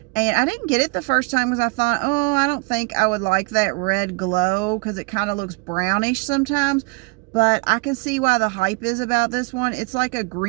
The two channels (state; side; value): quieter; left; 28.9 dB